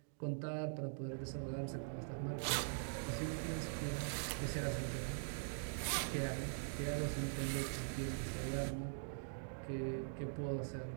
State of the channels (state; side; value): silent; left; digital silence